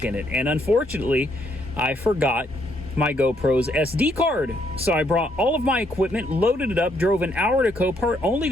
in it. And unfortunately, I forgot my GoPro's SD card. So I brought all of my equipment, loaded it up, drove an hour to Copart, only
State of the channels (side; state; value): both; normal; correlation 0.72